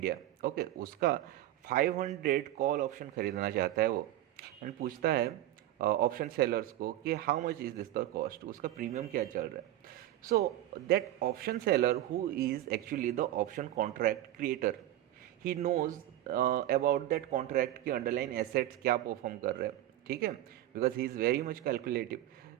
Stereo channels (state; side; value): quieter; left; 13.8 dB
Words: Okay, उसका 500 कॉल ऑप्शन खरीदना चाहता है वो, एंड पूछता है ऑप्शन सेलर्स को कि how much is this the cost, उसका प्रीमियम क्या चल रहा है. So that option seller who is actually the option contract creator, he knows about that contract के अंडरलाइन एसेट्स क्या परफॉर्म कर रहे हैं. ठीक है, because he is very much calculative.